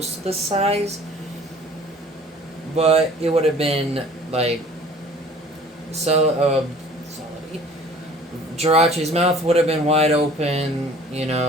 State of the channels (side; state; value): both; normal; correlation 0.49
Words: to the size, but it would have been like Jirachi's mouth would have been wide open. You